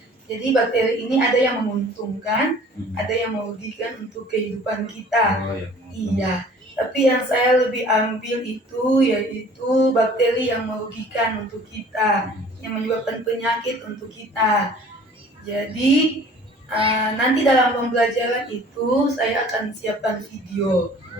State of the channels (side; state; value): both; normal; correlation 0.50